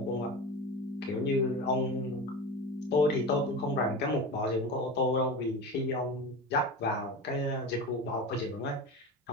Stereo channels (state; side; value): normal; both; correlation 0.27